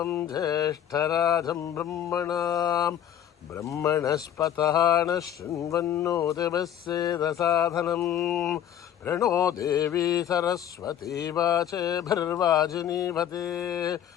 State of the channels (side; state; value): right; quieter; 10.3 dB